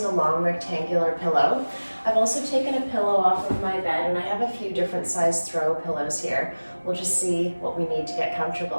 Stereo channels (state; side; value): inverted; both; correlation -1.00